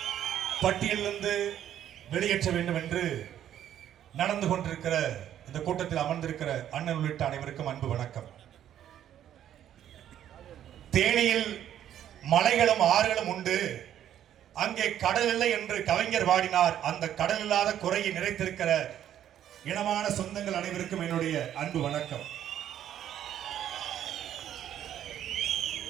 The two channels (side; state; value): left; quieter; 10.8 dB